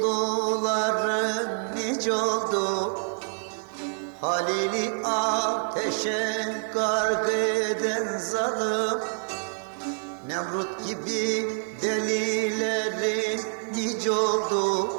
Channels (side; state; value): left; silent; digital silence